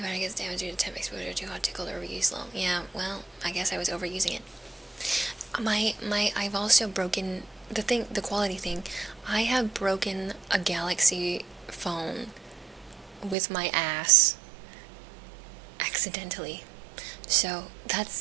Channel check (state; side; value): drops out; left; at 13.4 s